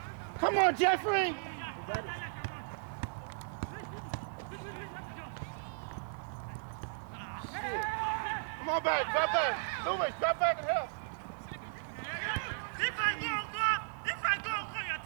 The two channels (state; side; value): silent; left; 54 dB below the other